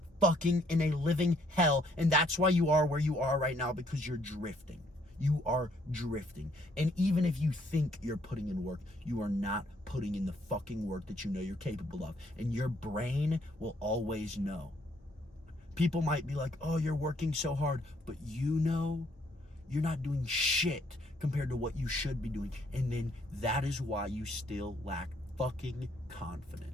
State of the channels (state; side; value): normal; both; correlation 0.67